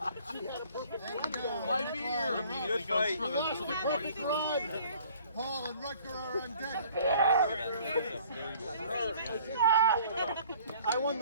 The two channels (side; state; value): both; inverted; correlation -0.54